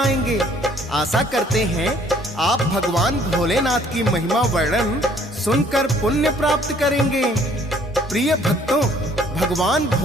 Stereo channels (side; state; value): both; normal; correlation 0.60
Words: आशा करते हैं आप भगवान भोलेनाथ की महिमा वर्णन सुनकर पुण्य प्राप्त करेंगे। प्रिय भक्तों, भगवान